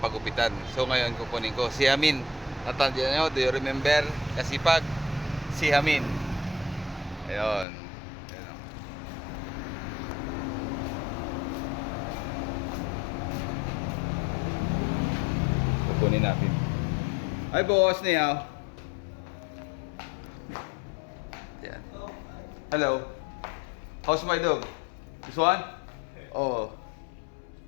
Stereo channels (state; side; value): drops out; right; at 7.7 s